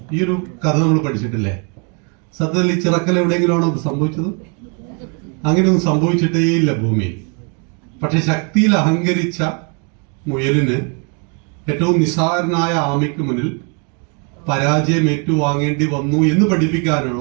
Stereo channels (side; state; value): left; quieter; 36.9 dB